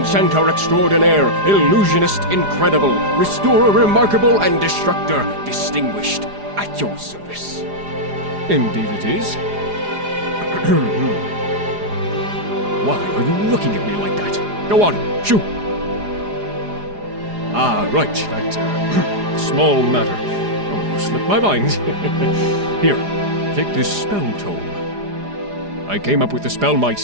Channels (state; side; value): late; left; 4.9 ms